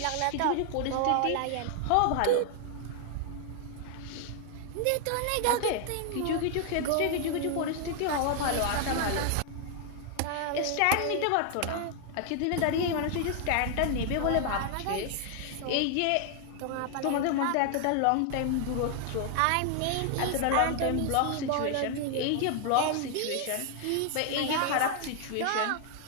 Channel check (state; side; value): different; both; correlation 0.00